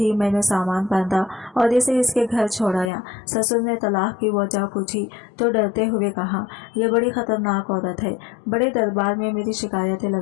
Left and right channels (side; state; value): right; drops out; at 2.9 s